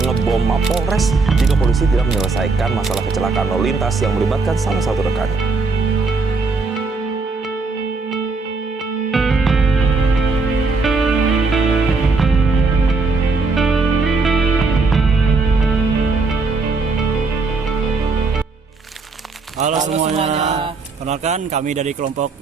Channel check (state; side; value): quieter; left; 4.0 dB